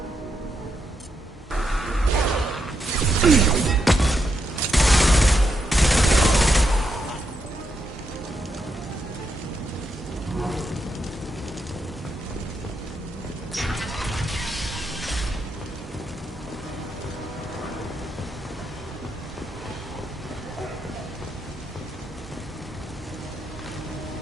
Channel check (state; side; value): normal; both; correlation 0.81